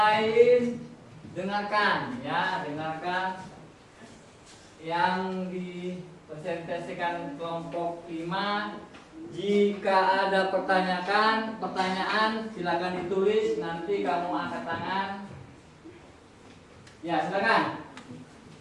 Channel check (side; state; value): both; identical; correlation 1.00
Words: dengarkan ya, dengarkan yang dipresentasikan kelompok 5. Jika ada pertanyaan silakan ditulis, nanti kamu angkat tangan. Ya, silakan.